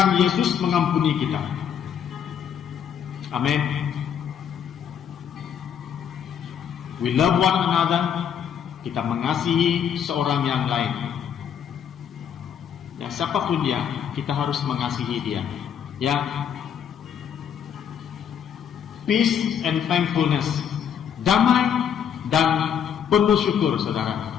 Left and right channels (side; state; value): right; quieter; 8.4 dB